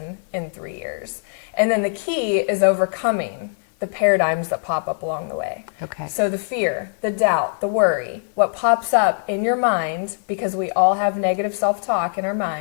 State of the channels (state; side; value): silent; right; 61 dB below the other